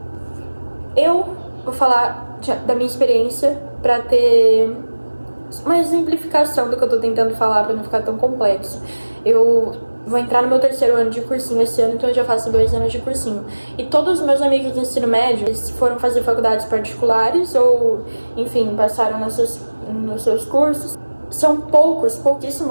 Eu vou falar da minha experiência pra ter uma exemplificação do que eu tô tentando falar pra não ficar tão complexo. Eu vou entrar no meu 3º ano de cursinho esse ano, então eu já faço 2 anos de cursinho. E todos os meus amigos do ensino médio, eles foram fazer faculdades particulares ou, enfim, passaram nos seus cursos. São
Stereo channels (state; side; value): inverted; both; correlation -1.00